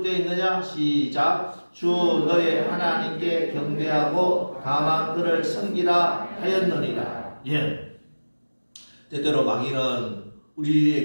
있느냐? 시작. 주 너의 하나님께 경배하고 다만 그를 섬기라 하였느니라. 예. 때때로 마귀는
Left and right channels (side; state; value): both; inverted; correlation -1.00